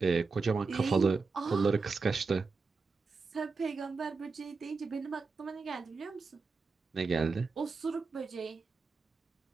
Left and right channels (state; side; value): quieter; left; 4.5 dB